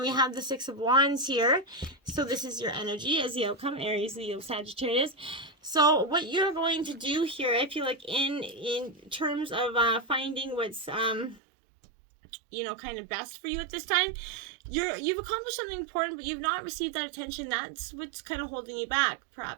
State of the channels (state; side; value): drops out; left; at 11.4 s